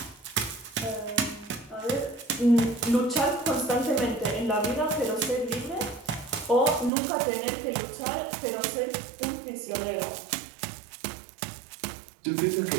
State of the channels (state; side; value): drops out; left; at 6.9 s